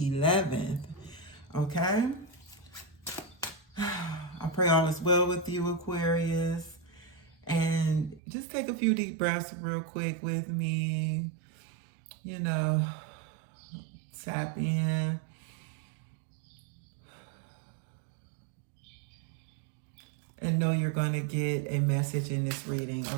11th. Okay? I pray all is well with you, Aquarius. And just take a few deep breaths real quick with me. You know, tap in. And know you're going to get a message in this reading,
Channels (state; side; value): drops out; left; at 8.2 s